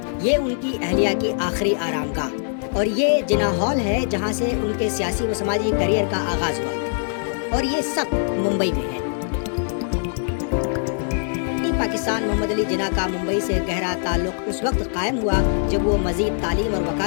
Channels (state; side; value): silent; right; 64 dB below the other